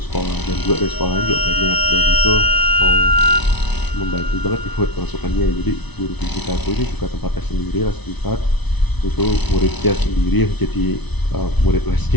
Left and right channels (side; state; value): right; late; 1.0 ms